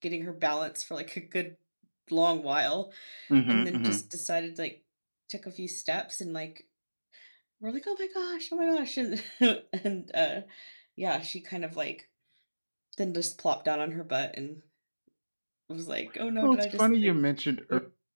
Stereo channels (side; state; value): both; inverted; correlation -1.00